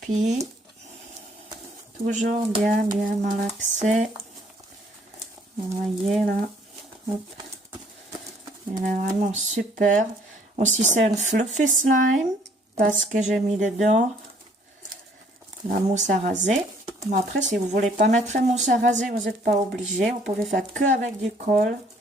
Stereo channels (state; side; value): normal; both; correlation 0.61